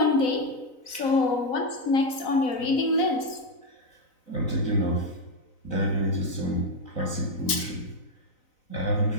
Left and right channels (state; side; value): late; right; 4.0 ms